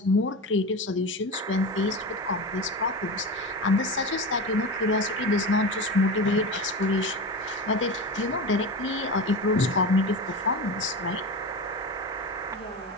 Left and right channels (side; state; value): both; normal; correlation 0.25